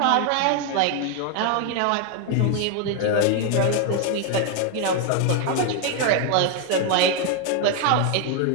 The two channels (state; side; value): different; both; correlation 0.01